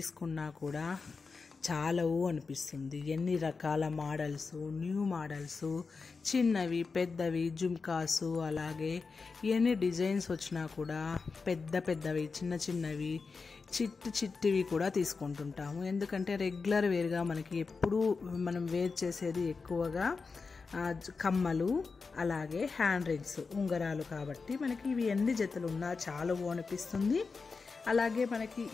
కూడా చాలవు అనిపిస్తుంది. ఎన్ని రకాల మోడల్స్, న్యూ మోడల్స్, చిన్నవి పెద్దవి జుమ్కాసు, అలాగే ఎన్ని డిజైన్స్ వచ్చినా కూడా పెద్దవి చిన్న చిన్నవి చిట్టివి కూడా తీసుకుంటుంటాము. ఎందుకంటే రెగ్యులర్ వేర్గా మనకి ఎప్పుడూ మనం వేర్ చేసేది ఎక్కువగా కమ్మలు, అలాగే హ్యాండ్ రింగ్స్, ఉంగరాలు. కాబట్టి మనకి ఇవి ఎన్ని జతలు ఉన్నా చాలవు అనిపిస్తుంది. అలాగే మనకి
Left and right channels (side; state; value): right; quieter; 4.6 dB